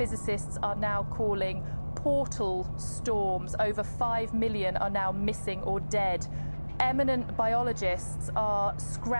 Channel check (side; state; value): both; inverted; correlation -1.00